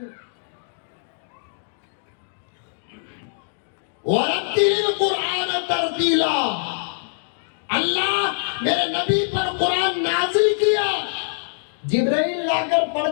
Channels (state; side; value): silent; right; digital silence